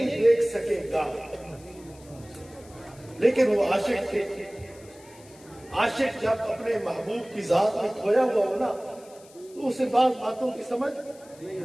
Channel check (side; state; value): left; noise; hiss, 24 dB below the sound